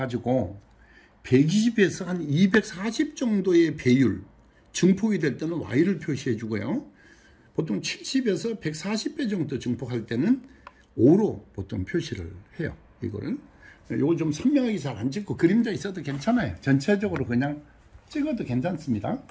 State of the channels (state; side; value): identical; both; correlation 1.00